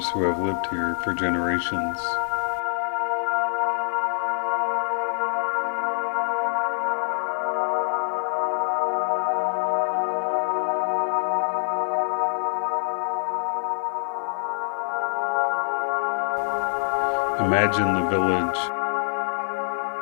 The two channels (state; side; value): silent; right; digital silence